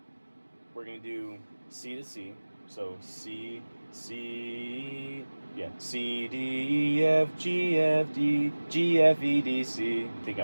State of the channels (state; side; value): inverted; both; correlation -1.00